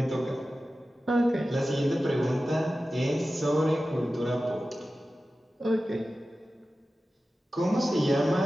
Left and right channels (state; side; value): normal; both; correlation 0.94